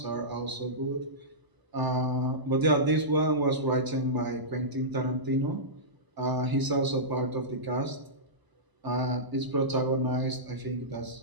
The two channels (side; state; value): left; late; 1.0 ms